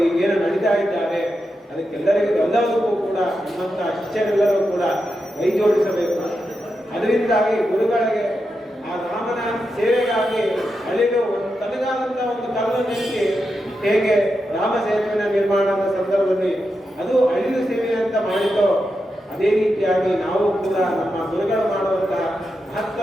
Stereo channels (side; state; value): both; normal; correlation 0.87